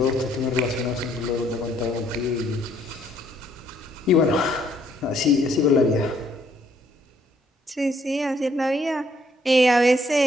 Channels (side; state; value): both; normal; correlation 0.67